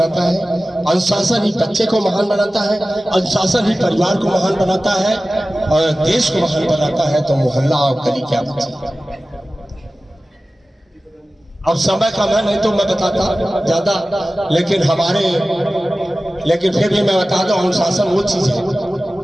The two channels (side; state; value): both; normal; correlation 0.96